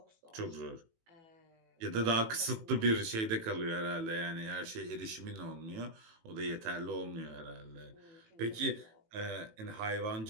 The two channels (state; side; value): late; left; 18 ms